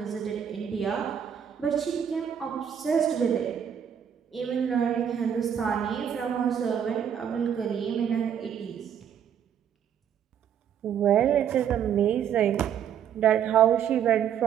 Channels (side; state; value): left; quieter; 8.7 dB